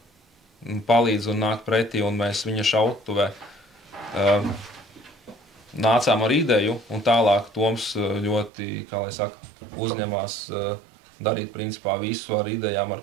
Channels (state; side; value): drops out; left; at 8.5 s